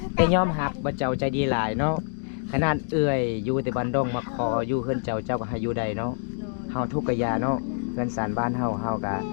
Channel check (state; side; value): silent; right; 61 dB below the other